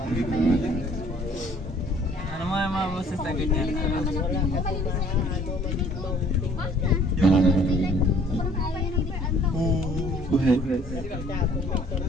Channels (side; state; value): both; normal; correlation 0.57